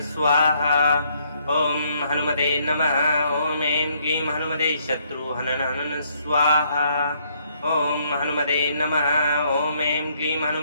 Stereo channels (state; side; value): inverted; both; correlation -0.69